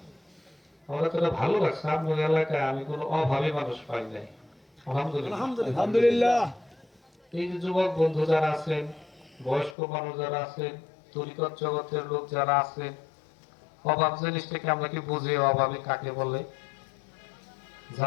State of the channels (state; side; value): drops out; right; at 9.8 s